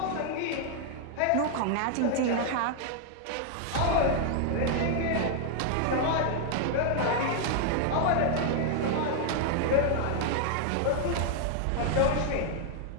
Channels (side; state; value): both; different; correlation 0.00